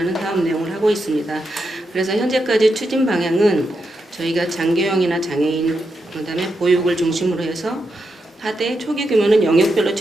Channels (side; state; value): both; normal; correlation 0.85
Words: 사업 내용을 하고 있습니다. 그래서 현재까지 추진 방향은 저희가 장교형이나 장애인 그다음에 보육을 중심으로 해서 하되 초기 규모는 영역별로